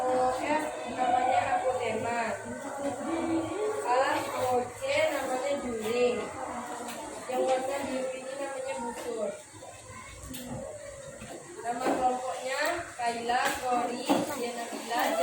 OF namanya apotema. OC namanya juling. Yang warna biru ini namanya busur. Nama kelompoknya Kaila, Kori, Jenabila,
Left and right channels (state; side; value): identical; both; correlation 1.00